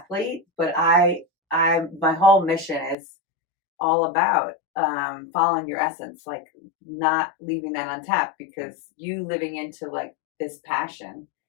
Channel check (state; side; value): drops out; right; at 3.0 s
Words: But my whole mission is all about following your essence, like not leaving that untapped, because you living into like this passion,